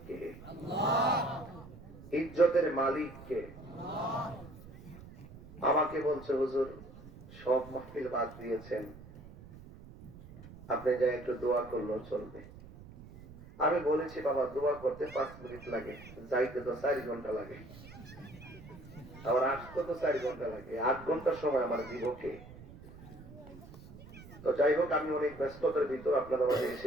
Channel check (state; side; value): noise; right; rumble, 17 dB below the sound